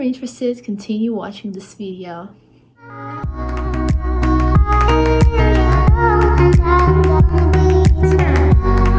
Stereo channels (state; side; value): identical; both; correlation 1.00